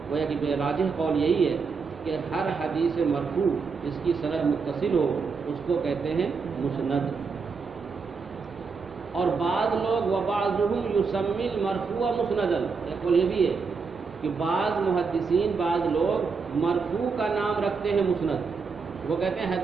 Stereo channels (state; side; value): quieter; left; 5.0 dB